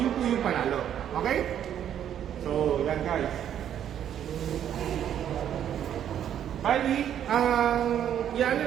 po yung panalo. Okay? So yan guys. Bali, ang i-ano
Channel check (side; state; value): left; quieter; 9.9 dB